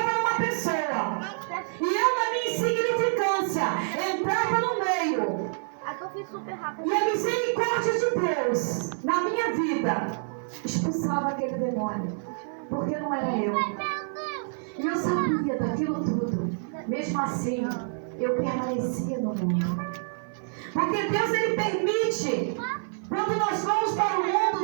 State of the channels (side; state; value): left; silent; 55 dB below the other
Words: numa pessoa. E eu, na minha insignificância, entrava no meio. E a misericórdia de Deus, na minha vida, expulsava aquele demônio. Porque não era eu. E eu sabia daquilo tudo. Mesmo assim, eu permanecia no mundo. Porque Deus, Ele permite. Quando nós vamos para o